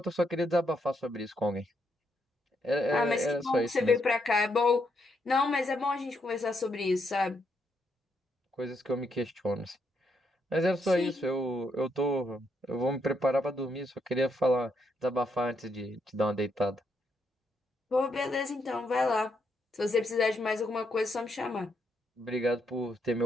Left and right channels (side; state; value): both; normal; correlation 0.77